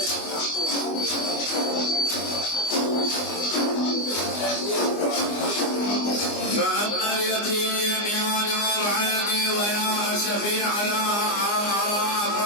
فأما اليتيم يا نور عيني ويا أسفي على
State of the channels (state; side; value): late; right; 24 ms